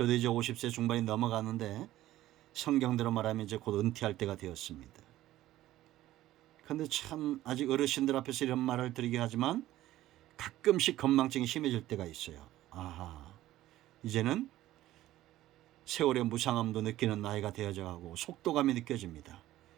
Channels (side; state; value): left; quieter; 14.9 dB